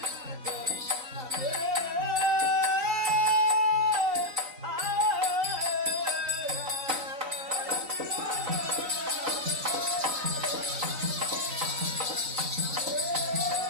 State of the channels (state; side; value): late; left; 3.9 ms